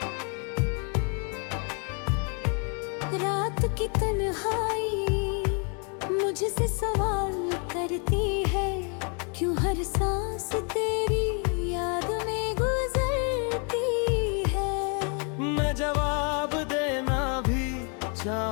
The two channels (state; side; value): quieter; right; 37.6 dB